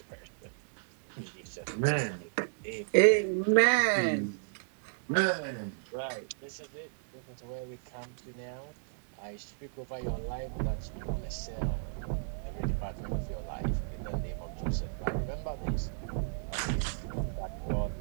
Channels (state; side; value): silent; left; digital silence